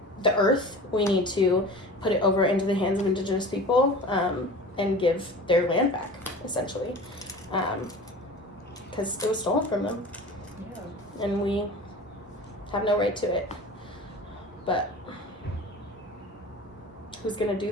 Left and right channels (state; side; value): normal; both; correlation 0.38